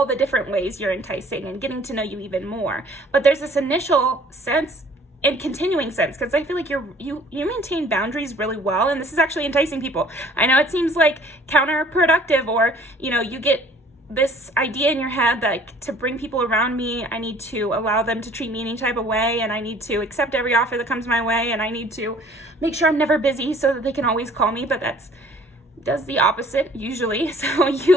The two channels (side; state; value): both; normal; correlation 0.54